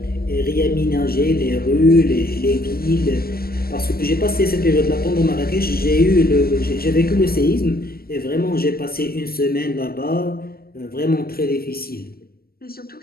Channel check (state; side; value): late; right; 0.44 ms